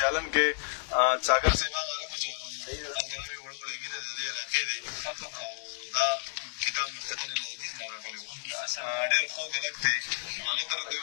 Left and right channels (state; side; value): silent; right; 57 dB below the other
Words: کې څاګر صاحب هغه هلکه چې هلته نوې وړه وړه ګیده د دې علاقې دی او دا کتاب مختتن الحدیث نه راغلی و ډېر خوږ هلک دی هغه ته راته